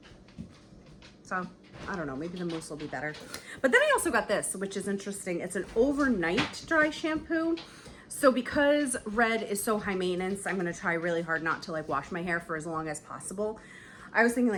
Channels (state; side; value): identical; both; correlation 1.00